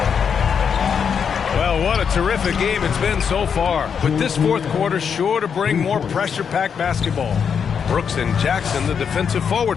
Well, what a terrific game it's been so far. With this fourth quarter sure to bring more pressure-packed basketball. Brooks and Jackson, the defensive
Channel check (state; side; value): quieter; right; 6.9 dB